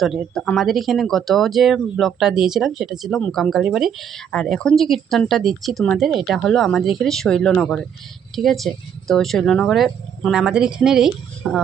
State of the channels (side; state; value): left; quieter; 8.4 dB